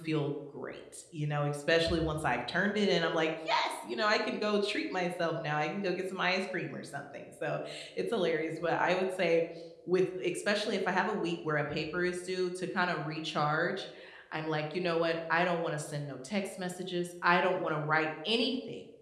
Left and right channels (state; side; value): identical; both; correlation 1.00